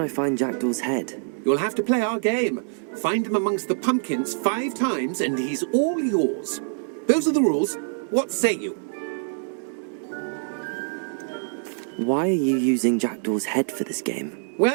I find Jackdaw's head? You'll have to play our game. Find him amongst the pumpkins 5 times and he's all yours. Those are the rules. What say you? Why are you using Jackdaw's head for this game?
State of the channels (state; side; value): silent; left; 62 dB below the other